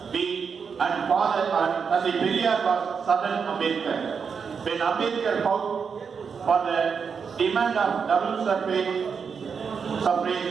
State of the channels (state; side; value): quieter; left; 6.1 dB